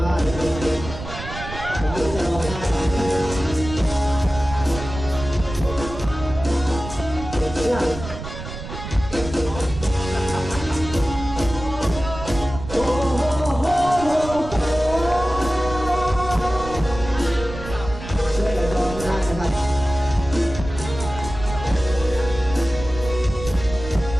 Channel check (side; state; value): right; noise; rumble, 10 dB below the sound